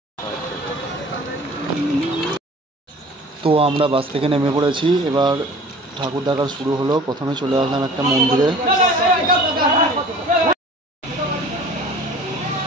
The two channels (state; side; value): normal; both; correlation 0.45